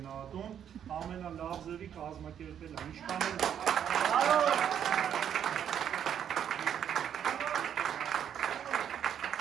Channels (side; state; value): left; quieter; 9.1 dB